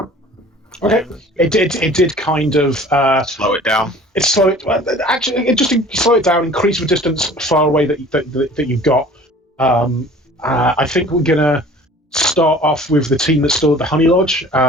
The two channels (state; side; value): normal; both; correlation 0.47